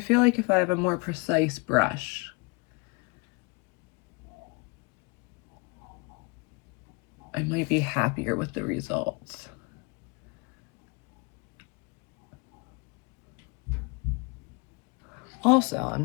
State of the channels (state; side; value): quieter; right; 30.2 dB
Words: feel like if I have a more precise brush, I might be happier with the results. Also,